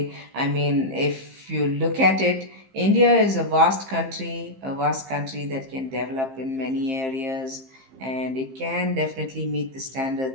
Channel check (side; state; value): left; late; 15 ms